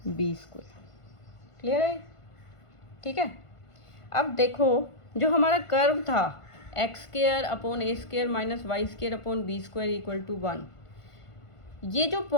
b²। क्लियर है? ठीक है, अब देखो जो हमारा कर्व था x² upon a² minus y² upon b² equal to 1, ये जो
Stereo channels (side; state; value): right; late; 1.5 ms